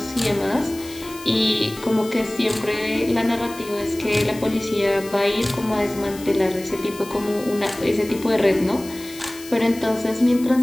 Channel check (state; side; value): noise; left; hiss, 17 dB below the sound